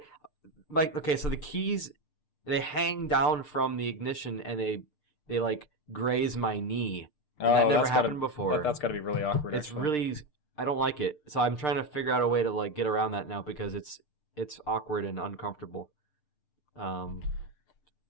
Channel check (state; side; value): late; right; 6.7 ms